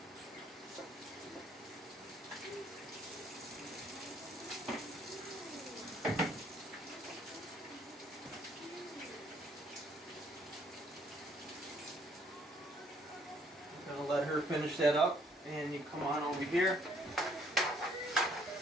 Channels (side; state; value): both; normal; correlation 0.64